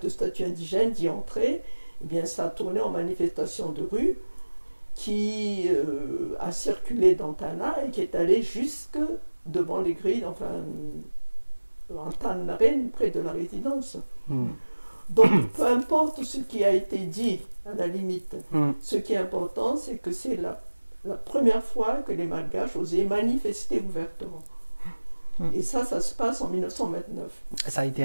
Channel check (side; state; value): both; inverted; correlation -1.00